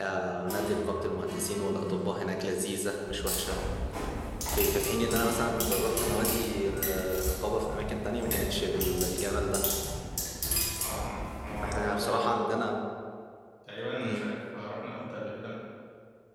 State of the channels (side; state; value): both; identical; correlation 1.00